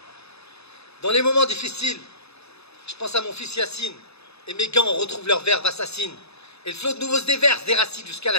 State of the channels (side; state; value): right; late; 0.79 ms